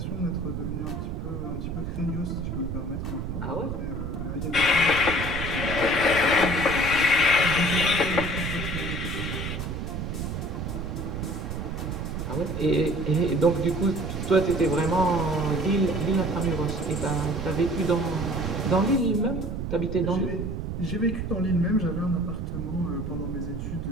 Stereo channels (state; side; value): noise; right; rumble, 4 dB below the sound